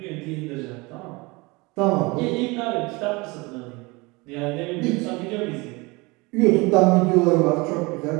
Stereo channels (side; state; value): left; quieter; 25.2 dB